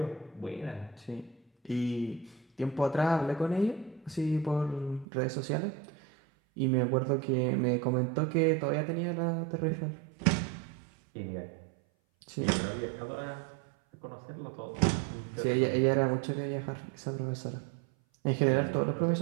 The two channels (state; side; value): drops out; left; at 5.1 s